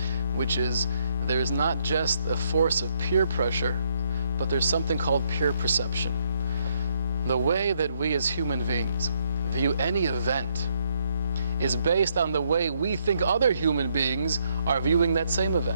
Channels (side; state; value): both; inverted; correlation -0.72